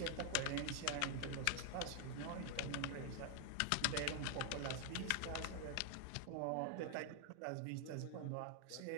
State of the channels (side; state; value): both; different; correlation 0.00